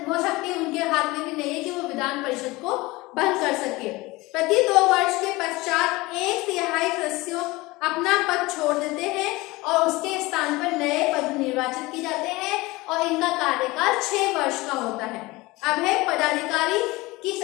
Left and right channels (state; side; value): quieter; right; 21.5 dB